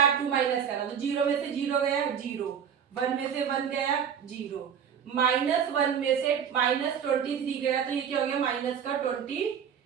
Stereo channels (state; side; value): quieter; left; 7.9 dB